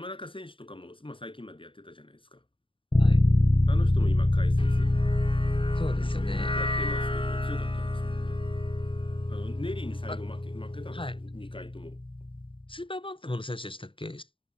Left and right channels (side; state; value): right; late; 0.25 ms